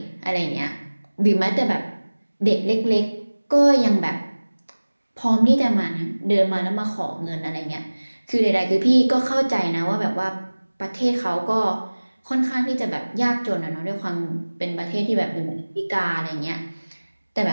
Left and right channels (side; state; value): both; inverted; correlation -1.00